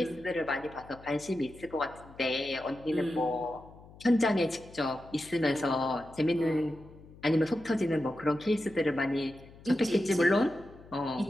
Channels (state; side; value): noise; left; hum, 21 dB below the sound